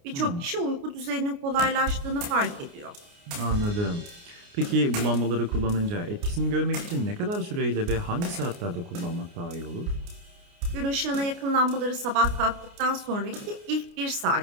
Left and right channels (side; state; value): left; late; 29 ms